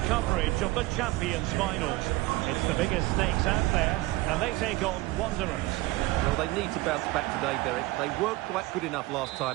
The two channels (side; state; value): left; quieter; 19.9 dB